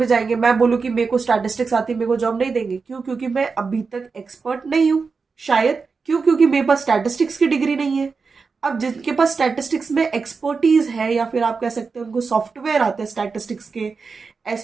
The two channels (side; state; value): left; quieter; 4.8 dB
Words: जाएंगे, मैं बोलूँ कि मेरे को स्टैटिस्टिक्स आती है, मेरे को जॉब नहीं देंगे। क्यों? क्योंकि मैं अभी तक एक्सपर्ट नहीं हूँ, शायद। क्यों? क्योंकि मेरे पास स्टैटिस्टिक्स की डिग्री नहीं है। अब जिनके पास स्टैटिस्टिक्स में एक्सपर्टीज है, या फिर आप कह सकते हैं उनको सॉफ्टवेयर आते हैं स्टैटिस्टिक्स के,